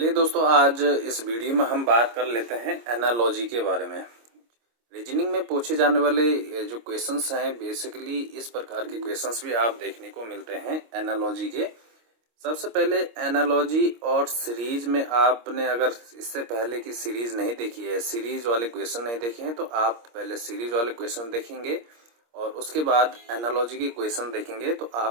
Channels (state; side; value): late; left; 26 ms